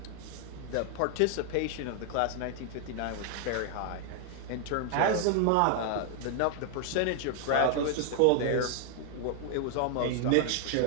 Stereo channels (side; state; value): both; different; correlation 0.00